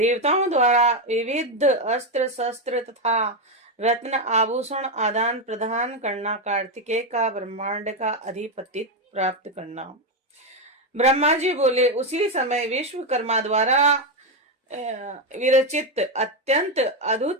द्वारा विविध अस्त्र शस्त्र तथा रत्न आभूषण आदान प्रदान करना, कार्तिकेय का ब्रह्मांड का अधिपति प्राप्त करना। ब्रह्मा जी बोले, उसी समय विश्वकर्मा द्वारा विरचित अत्यंत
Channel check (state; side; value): normal; both; correlation 0.07